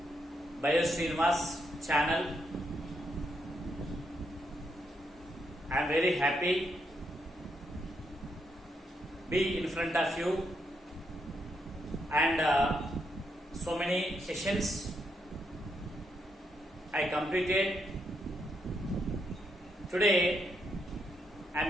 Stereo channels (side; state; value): both; normal; correlation 0.79